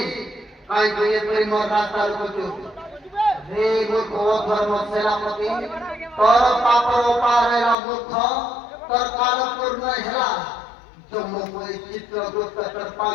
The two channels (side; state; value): right; drops out; at 7.8 s